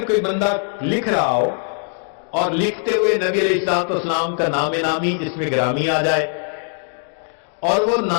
کوئی بندہ لکھ رہا ہو اور لکھتے ہوئے نبی علیہ الصلوۃ والسلام کا نام نامی اس میں گرامی آ جائے اور وہ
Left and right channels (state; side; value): silent; right; 58 dB below the other